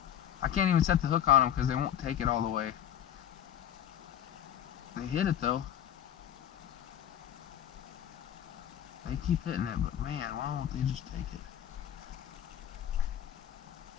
I can't even set the hook on them because they won't take it all the way. They hit it though. They keep hitting it, but man, why won't they just take it?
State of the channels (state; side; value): quieter; right; 10.4 dB